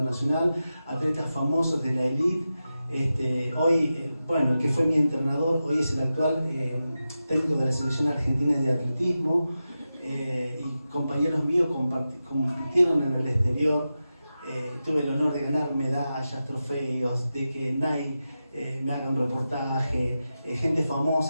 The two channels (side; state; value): both; inverted; correlation -0.92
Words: atletas famosos de la élite. Hoy, el que fue mi entrenador, hoy es el actual técnico de la selección argentina de atletismo, y compañeros míos compitieron en el exterior. Tuve el honor de ganar medallas, trofeos, de que Nike me haga un reportaje, gente